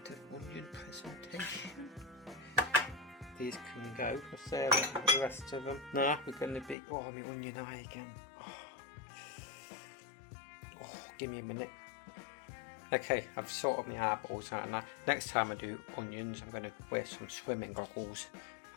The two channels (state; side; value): drops out; right; at 6.8 s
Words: of onion presentation. These can go. What's there with the rest of them? Nah, we're going to be, oh, my onion eye again. Oh, give me a minute. Okay, I've sorted my eyeballs out now. Next time I do onions, I'm going to wear some swimming goggles.